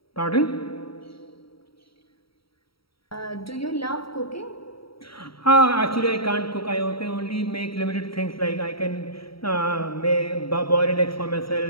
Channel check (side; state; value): right; late; 0.75 ms